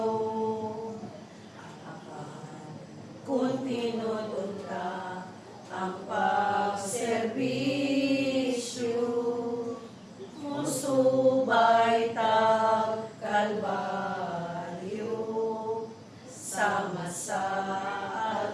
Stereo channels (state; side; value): identical; both; correlation 1.00